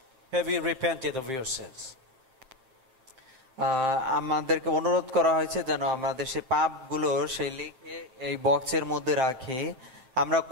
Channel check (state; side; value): late; left; 7.6 ms